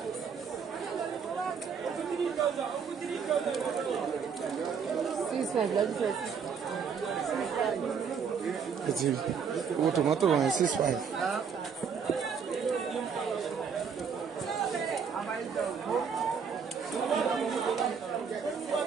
Ètì owó tòmátò wọ̀nyí 6.5.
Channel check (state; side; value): quieter; left; 6.5 dB